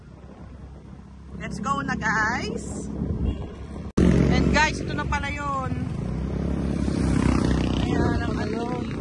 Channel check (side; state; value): both; identical; correlation 1.00